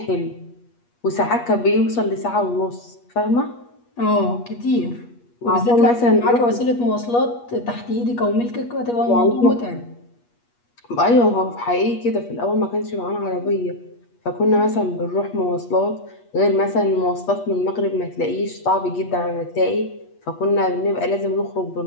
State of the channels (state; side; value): late; right; 8.4 ms